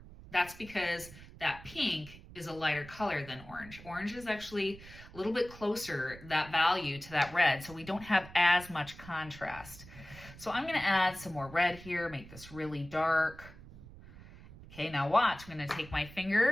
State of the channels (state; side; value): noise; right; rumble, 17 dB below the sound